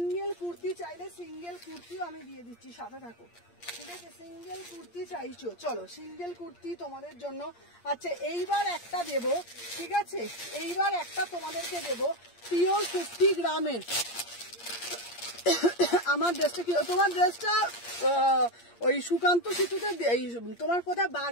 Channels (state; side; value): late; right; 8.6 ms